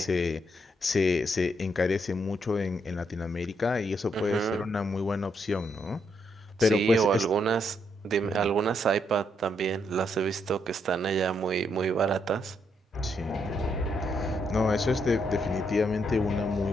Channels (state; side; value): normal; both; correlation 0.76